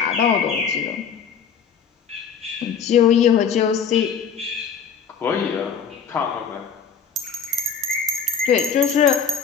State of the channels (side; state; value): right; quieter; 6.7 dB